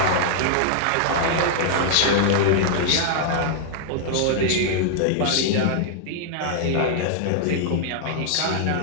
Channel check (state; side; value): different; both; correlation -0.01